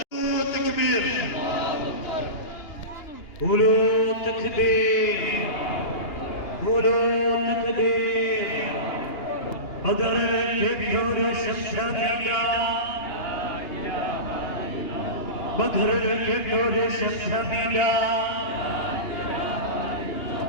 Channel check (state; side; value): late; right; 2.9 ms